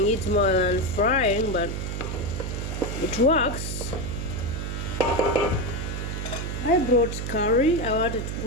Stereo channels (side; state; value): right; noise; hum, 4 dB below the sound